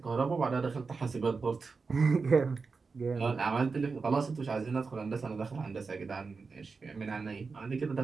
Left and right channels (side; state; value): left; quieter; 4.6 dB